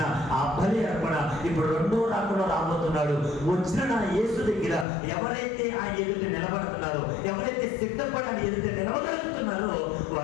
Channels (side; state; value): right; drops out; at 4.9 s